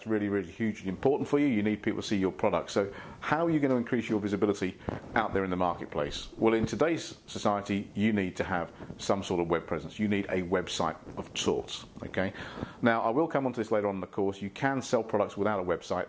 really, really hugely important for you. You need people to see your product. So how are you going to increase your visibility out there in the marketplace? Well, in today's society, you need to have some sort of web presence. You need a website of sorts. Okay. Now, I will come on to this later on in the course. You can sell products without a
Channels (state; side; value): identical; both; correlation 1.00